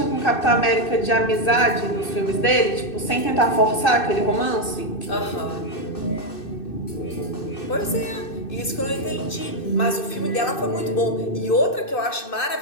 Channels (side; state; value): right; late; 2.6 ms